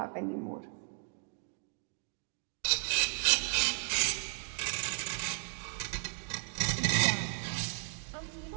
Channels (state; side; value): silent; left; 55 dB below the other